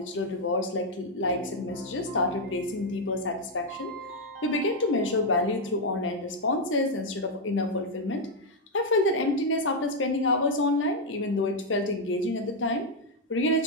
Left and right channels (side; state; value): both; normal; correlation 0.01